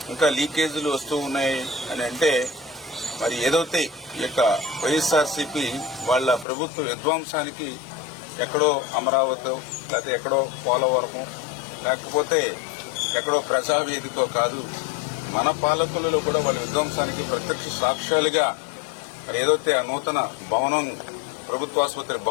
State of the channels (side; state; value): right; drops out; at 6.5 s